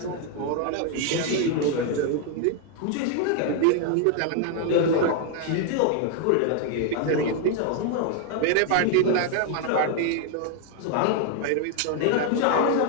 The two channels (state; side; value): different; both; correlation 0.00